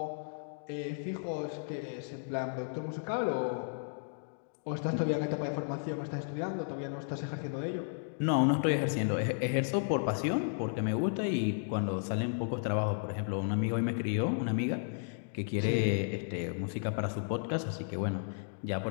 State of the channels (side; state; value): right; silent; digital silence